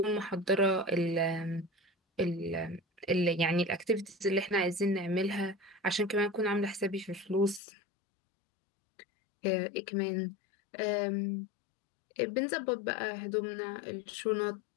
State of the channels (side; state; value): right; drops out; at 7.6 s